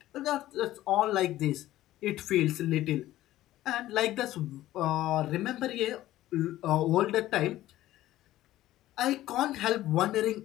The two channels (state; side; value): quieter; right; 14.8 dB